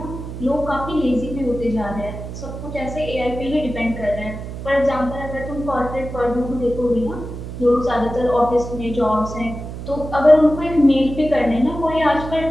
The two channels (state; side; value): noise; right; hum, 9 dB below the sound